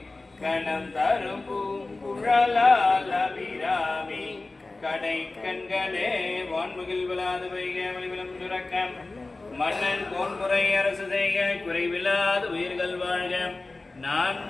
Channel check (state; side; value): quieter; right; 3.3 dB